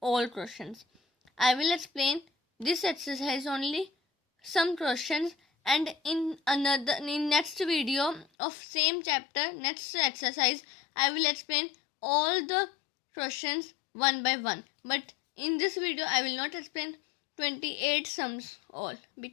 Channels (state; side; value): drops out; right; at 8.2 s